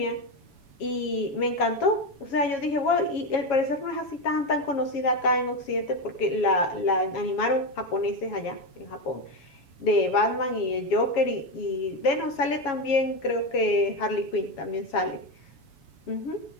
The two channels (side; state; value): right; late; 7.3 ms